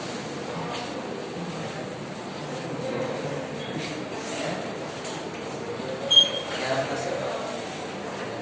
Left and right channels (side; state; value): both; identical; correlation 1.00